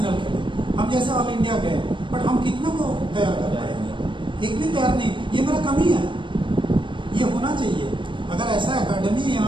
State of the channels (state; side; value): late; left; 0.24 ms